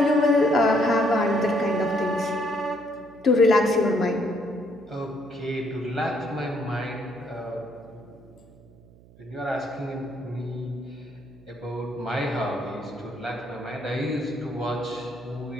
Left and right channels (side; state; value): right; noise; hum, 24 dB below the sound